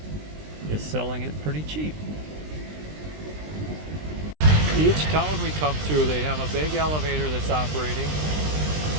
is selling it pretty cheap. Each town we come through, they have a big elevator that's operating.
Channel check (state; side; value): late; left; 20 ms